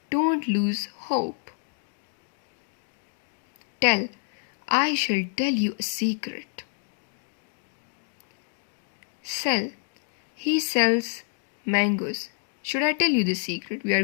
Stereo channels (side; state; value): right; silent; digital silence